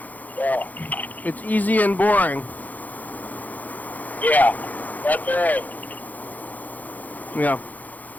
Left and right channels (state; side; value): late; right; 0.081 ms